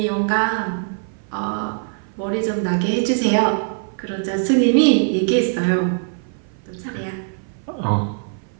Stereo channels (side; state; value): left; silent; 57 dB below the other